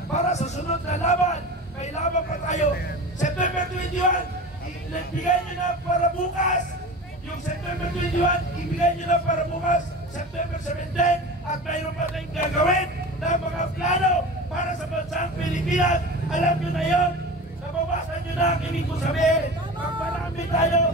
para sa sunod na laban. May laban pa tayo. September 21, ibigay nyo na para bukas. Yung September 21, ibigay nyo na para bukas. September 17, at mayroon pa tayong gagawin na mga plano para sa bansang Pilipinas. Alam nyo na yun. Nabawasan nyo na ang ibig ko sabihin. Magparami tayo,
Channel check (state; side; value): normal; both; correlation 0.33